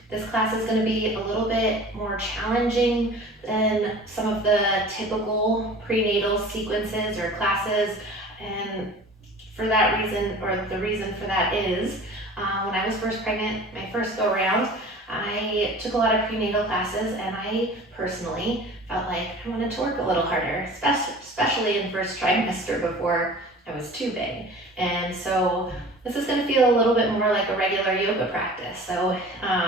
This class is going to be a little bit more challenging than some of the typical prenatal sequences or classes, and for that reason, or the reason for that is, when I was first pregnant, my first go around, I took a lot of prenatal classes, and I personally felt like I wanted to work a little harder, especially in first trimester before I was too big. And so this is going to feel a little bit more like a regular yoga practice. So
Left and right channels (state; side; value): normal; both; correlation 0.42